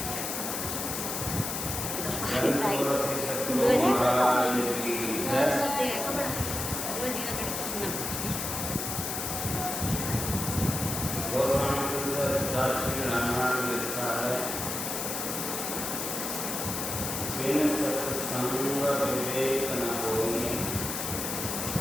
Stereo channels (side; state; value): left; noise; hiss, 3 dB below the sound